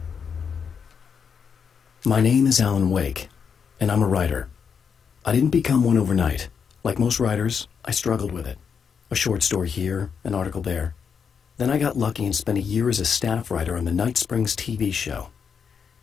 My name is Alan Wake, and I'm a writer. I didn't become one overnight. Like most writers, I struggled with it. A short story here, an article there. Then I got lucky and spent a year as a staff writer on the Night Springs TV show.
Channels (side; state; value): right; quieter; 6.6 dB